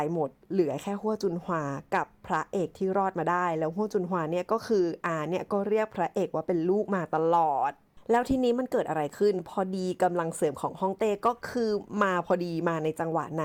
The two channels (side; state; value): both; identical; correlation 1.00